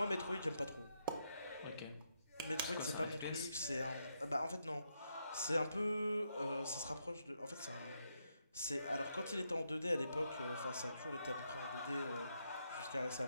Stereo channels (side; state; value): both; inverted; correlation -0.80